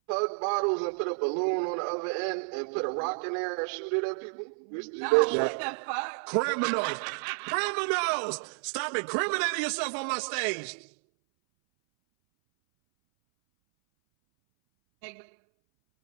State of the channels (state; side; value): silent; left; 58 dB below the other